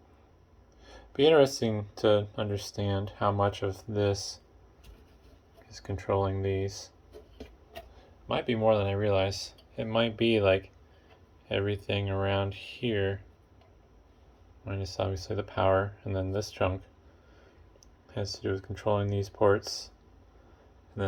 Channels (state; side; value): identical; both; correlation 1.00